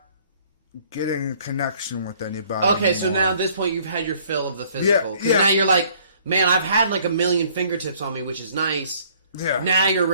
getting a connection with anybody. Okay, so anymore. now at this point you've had your fill of the physical. Because Yeah. now you're like, man, I've had like a million fingertips on me, which is nice. Yeah. Now you're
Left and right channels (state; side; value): inverted; both; correlation -0.59